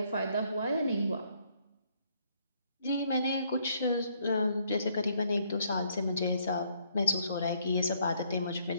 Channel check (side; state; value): both; inverted; correlation -0.68